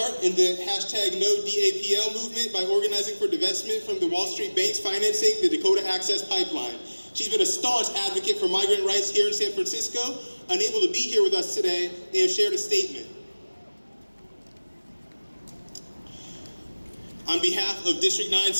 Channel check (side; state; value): both; inverted; correlation -1.00